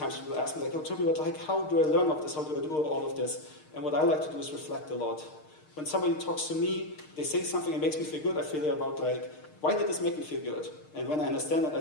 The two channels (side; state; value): right; late; 6.5 ms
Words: people ask me, like, oh, Tobias, like, how do I learn of this? How do I do all of this? And what I like to do is reflect a lot. When somebody talks to me, they say something that makes me feel good, I feel about, like, why did this make me feel good? And when I understand that,